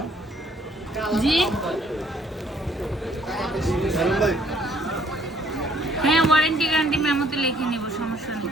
জি হ্যাঁ ওয়ারেন্টি গ্যারান্টি মেমোতে লিখে নিব, সমস্যা নেই।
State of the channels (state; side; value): normal; both; correlation 0.63